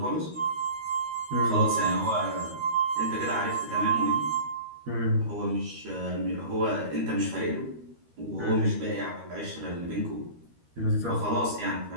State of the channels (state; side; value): late; left; 13 ms